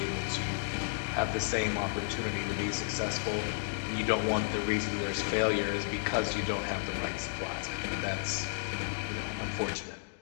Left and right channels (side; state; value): right; silent; digital silence